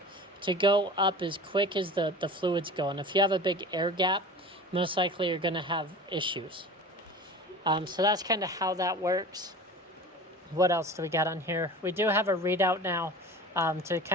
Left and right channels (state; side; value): normal; both; correlation 0.37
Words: to go up as quick as the fluid's going. If you have a big air gap, most likely you're going to have issues. So that's kind of how that works. What else do we got on here? We do have a readout now to